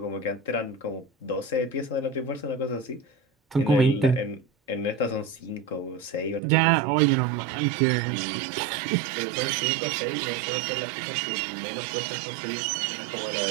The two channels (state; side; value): drops out; left; at 6.4 s